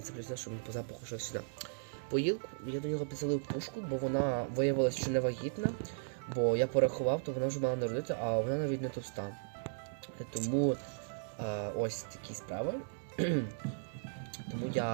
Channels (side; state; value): left; silent; digital silence